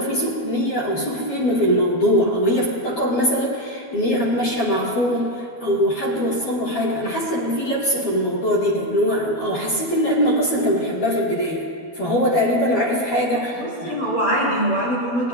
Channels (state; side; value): late; right; 12 ms